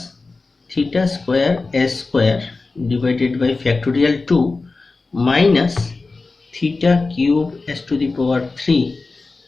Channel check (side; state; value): right; quieter; 3.8 dB